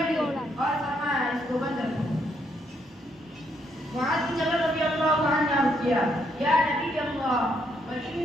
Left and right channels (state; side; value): normal; both; correlation 0.74